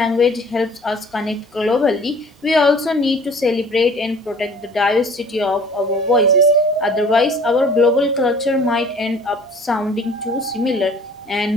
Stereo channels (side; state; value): both; normal; correlation 0.49